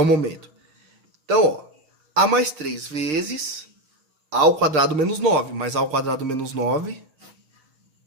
momento. Então, ó, A mais 3 vezes A ao quadrado menos 9. Mais A ao quadrado menos 9,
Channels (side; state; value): left; late; 6.6 ms